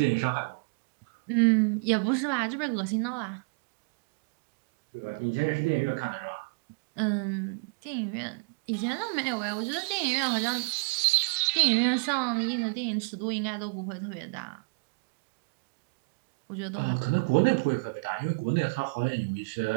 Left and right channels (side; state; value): left; quieter; 35.6 dB